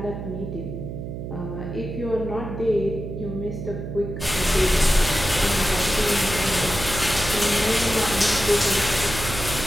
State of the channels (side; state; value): right; noise; hum, 7 dB below the sound